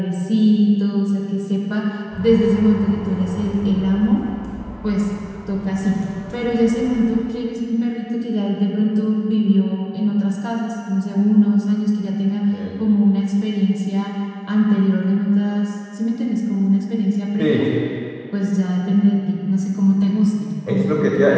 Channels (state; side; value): identical; both; correlation 1.00